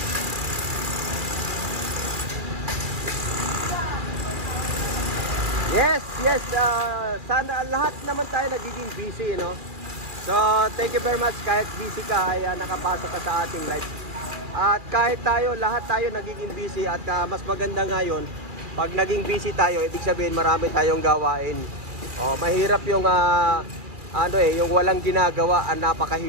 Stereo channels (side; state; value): left; late; 2.4 ms